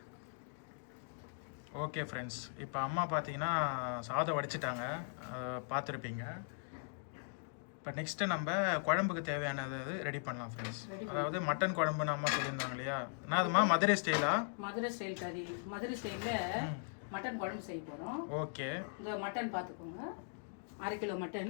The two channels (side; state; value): right; silent; digital silence